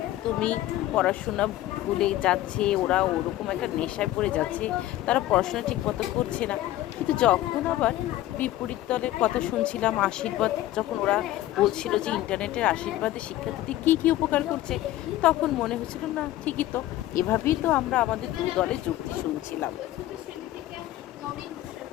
পড়াশোনা ভুলে যাচ্ছে, ওরা ওরকম একটা নেশায় পড়ে যাচ্ছে, তারা পড়াশোনা ঠিক মতো করছে না। কিন্তু যখন আবার বিপরীত দলের কথা শুনছিলাম, আশীর্বাদ যখন ওরা বলছিল যে ইন্টারনেটের আশীর্বাদে শিক্ষার্থীদের কী কী উপকার করছে, তখন মনে হচ্ছিল না ঠিকই তো, এভাবেই তো আমরা আমাদের দু দলের যুক্তি শুনছিলাম।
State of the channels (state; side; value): quieter; right; 14.9 dB